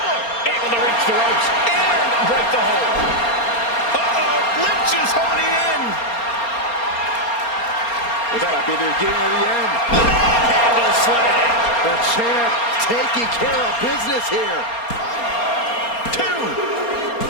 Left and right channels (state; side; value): late; right; 4.3 ms